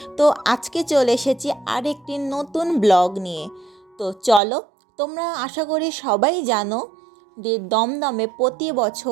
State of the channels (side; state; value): left; drops out; at 4.4 s